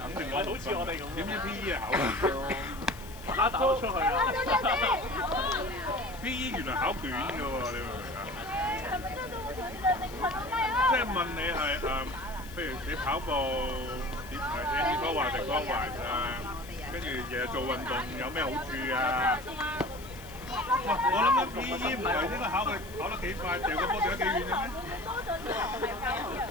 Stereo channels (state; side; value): noise; left; hiss, 19 dB below the sound